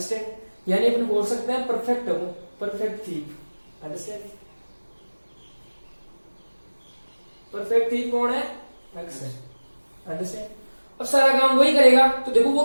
यानी अपन बोल सकते हैं परफेक्ट है वो, perfect thief, understand. Perfect thief कौन है, अक्स है, अंडरस्टैंड. अब सारा काम वही करेगा. तो देखो वो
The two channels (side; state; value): both; inverted; correlation -1.00